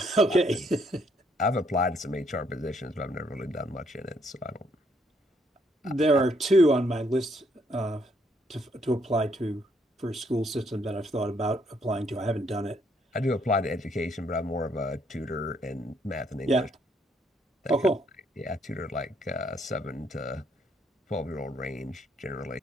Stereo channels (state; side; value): normal; both; correlation 0.70